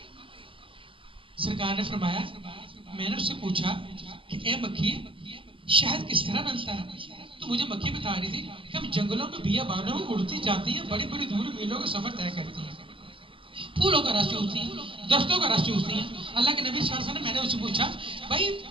سرکار نے فرمایا میں نے اس سے پوچھا کہ اے مکھی شہد کس طرح بنتا ہے؟ تو مجھے مکھی بتا رہی تھی کہ ہم جنگلوں میں بیابانوں میں اڑتی جاتی ہیں، بڑی بڑی دور میلوں کا سفر طے کرتی ہیں، پھولوں کا رس چوستی ہیں، درختوں کا رس چوستی ہیں۔ اللہ کے نبی صلی اللہ علیہ وسلم نے میں نے اس سے پوچھا بھائی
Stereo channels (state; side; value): late; left; 0.25 ms